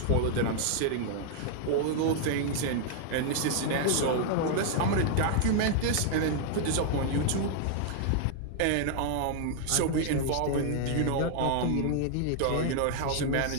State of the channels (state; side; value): different; both; correlation 0.00